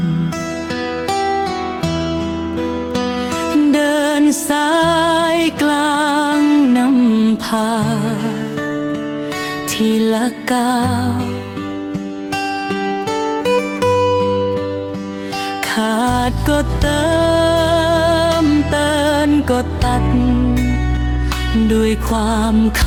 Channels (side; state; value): both; identical; correlation 1.00